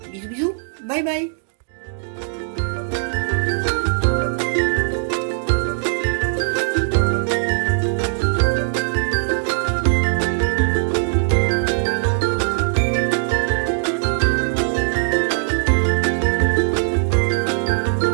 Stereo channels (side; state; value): left; silent; digital silence